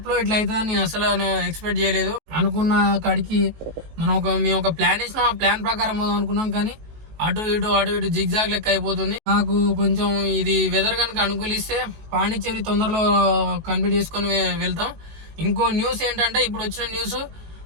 ఇట్లా అవుతుందని నేను అసలు ఎక్స్పెక్ట్ చేయలేదు. అనుకున్న కాడికి మేము ఒక ప్లాన్ వేసినాం. ఆ ప్లాన్ ప్రకారం పోదాం అనుకున్నాం, కానీ అటు ఇటు జిగ్జాగ్ లెక్క అయిపోతుంది. నాకు కొంచెం ఇది వెదర్ కనుక అనుకూలిస్తే పాండిచేరి తొందరలో కంప్లీట్ చేసుకొని వెళ్తాం. ఇంకో న్యూస్ ఏంటంటే, ఇప్పుడు వచ్చిన న్యూస్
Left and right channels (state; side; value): late; left; 19 ms